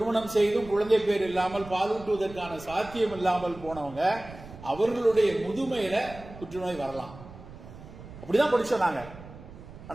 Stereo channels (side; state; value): right; noise; rumble, 16 dB below the sound